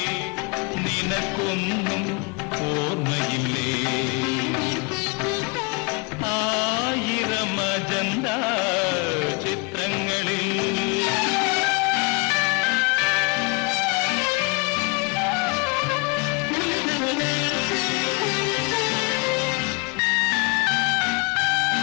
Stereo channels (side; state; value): right; quieter; 30.1 dB